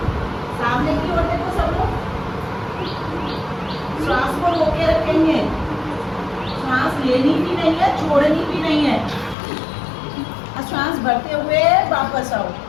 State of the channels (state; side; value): drops out; right; at 9.3 s